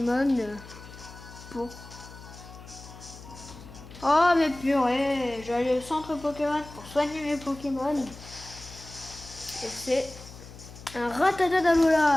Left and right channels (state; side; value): noise; left; hum, 17 dB below the sound